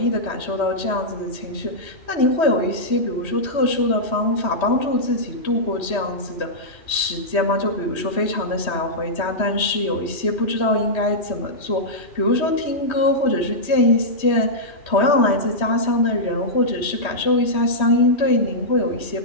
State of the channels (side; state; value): right; late; 3.1 ms